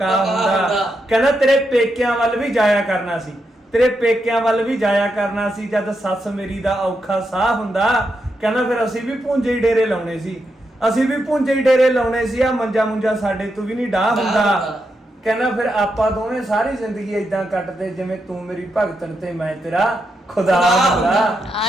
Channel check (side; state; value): both; normal; correlation 0.84